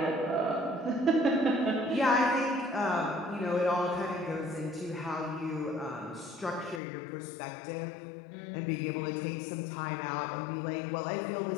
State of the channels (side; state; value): right; drops out; at 6.8 s